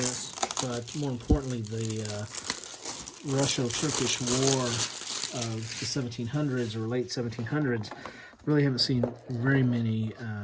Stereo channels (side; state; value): both; identical; correlation 1.00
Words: but more importantly, the Russo-Turkish War of the 1700s or late 1700s. Really haven't seen very many